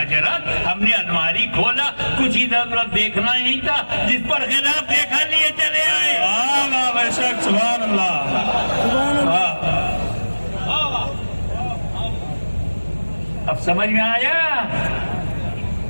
ہم نے الماری کھولا, کچھ ادھر ادھر دیکھنا ہی نہیں تھا, جس پر خلاف دیکھا لیے چلے آئے. بے شک, سبحان اللہ. اب سمجھ میں آیا؟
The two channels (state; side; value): inverted; both; correlation -1.00